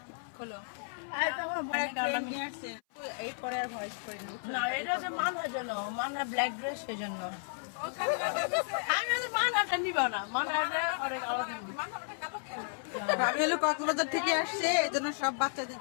খোলো। এই তখন নিয়ে আসছে এরপরে আর ভয়েস করি না, এটা যে মানহার জন্য, মানহা ব্ল্যাক ড্রেস সেই জন্য। আমি তো মানহাটা নিব না, মানহাটা অনেক আলাদা। আমি হলো কক্সবাজার থেকে আসছে, এই জন্য সব বাচ্চাদের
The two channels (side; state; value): right; silent; 56 dB below the other